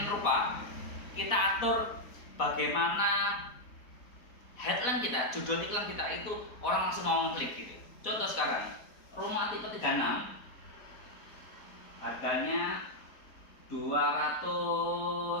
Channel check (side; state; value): right; late; 4.1 ms